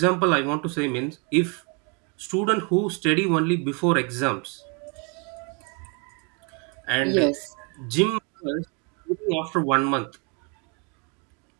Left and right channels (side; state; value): left; quieter; 34.5 dB